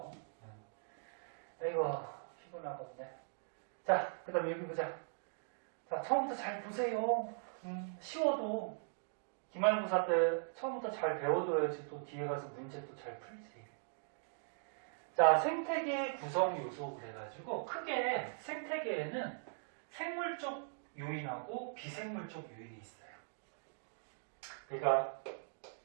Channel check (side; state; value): left; silent; digital silence